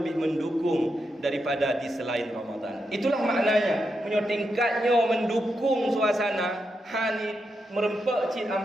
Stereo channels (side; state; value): both; normal; correlation 0.85